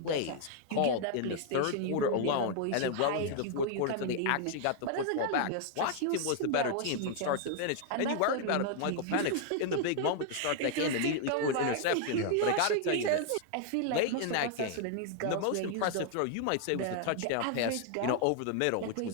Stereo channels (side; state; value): both; different; correlation 0.00